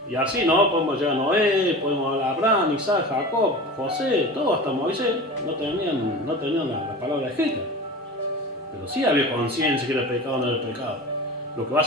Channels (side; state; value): both; normal; correlation 0.33